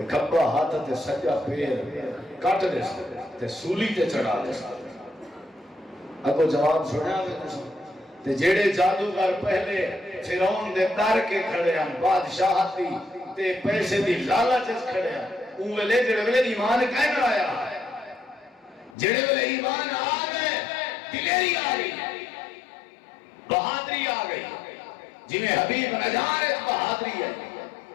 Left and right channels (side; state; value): right; drops out; at 18.9 s